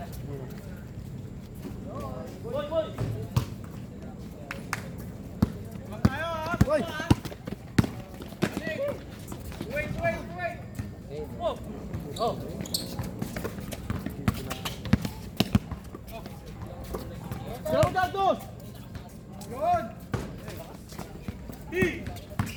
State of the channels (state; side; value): identical; both; correlation 1.00